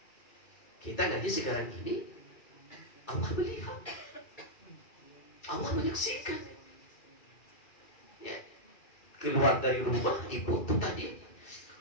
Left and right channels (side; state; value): right; late; 2.4 ms